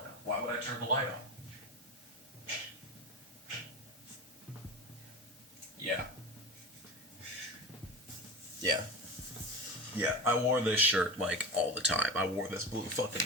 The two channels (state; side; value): normal; both; correlation 0.27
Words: Why would I turn the light off? Yeah. Yeah. Yeah, I wore this shirt, like, all the time. I wore this blue